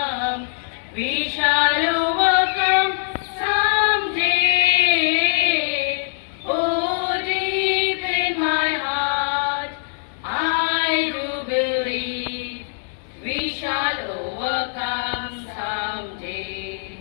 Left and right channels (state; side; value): silent; right; digital silence